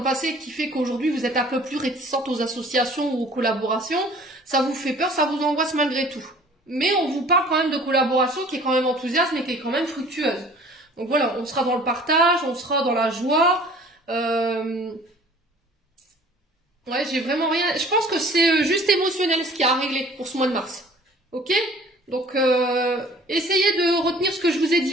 passé qui fait qu'aujourd'hui vous êtes un peu plus réticente aux associations ou aux collaborations? Ça vous fait peur, ça vous angoisse malgré tout. Mais on vous parle quand même de collaboration qui est quand même enthousiaste mais qui est quand même fructueuse. Donc voilà, on sera dans le partage, on sera dans la joie. Ouais, j'ai vraiment rien... Je pense que c'est juste émotionnel ce qu'il y a à régler pour ce mois de mars. Ok? Donc, essayez de retenir ce que je vous ai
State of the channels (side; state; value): both; normal; correlation 0.50